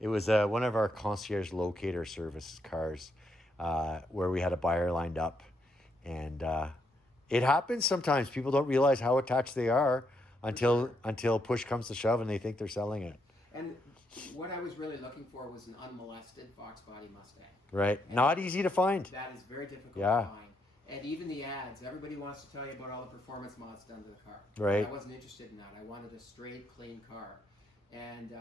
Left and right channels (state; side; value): normal; both; correlation 0.77